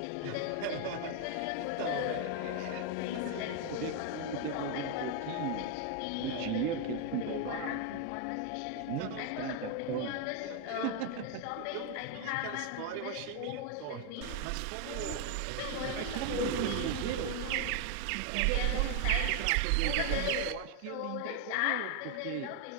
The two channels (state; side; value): different; both; correlation 0.01